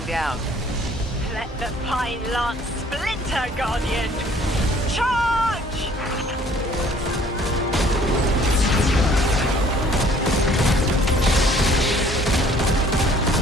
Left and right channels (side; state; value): both; normal; correlation 0.57